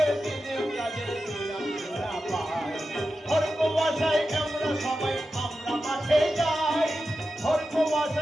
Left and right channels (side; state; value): both; normal; correlation 0.91